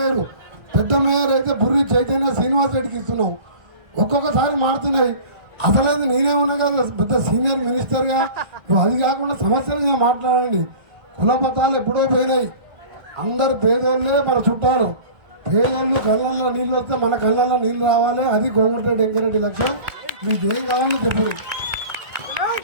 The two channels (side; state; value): left; late; 1.7 ms